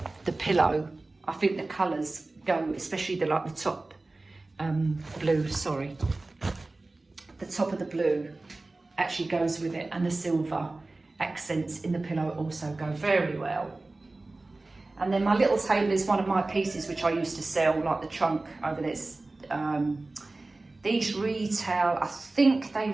pillow. I think the colours go, especially the top blue, sorry. The top of the blue actually goes with it, and the silver accents in the pillow also go very well. And then my little table is one of my pieces which I used to sell, like the trunk over there. These retail, I think they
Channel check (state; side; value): quieter; left; 3.1 dB